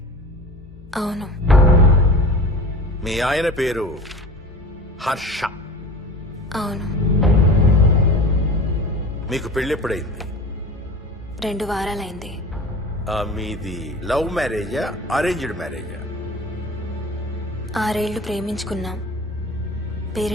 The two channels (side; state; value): both; normal; correlation 0.37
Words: అవును. మీ ఆయన పేరు హర్ష? అవును. మీకు పెళ్ళెప్పుడైంది? 2 వారాలైంది. మీది లవ్ మ్యారేజా అరేంజ్డ్ మ్యారేజా? 6 ఏళ్లు ప్రేమించుకున్నాం.